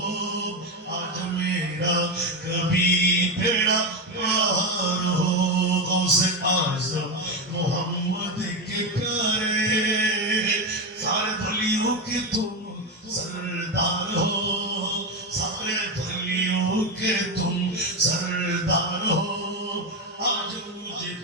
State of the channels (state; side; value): normal; both; correlation 0.12